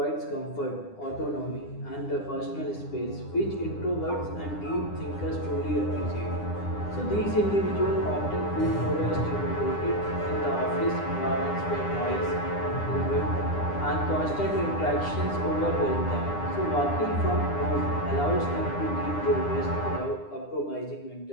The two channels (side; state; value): right; late; 9.9 ms